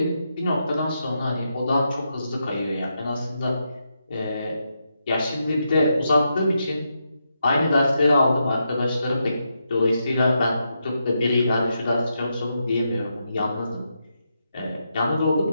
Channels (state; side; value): inverted; both; correlation -0.83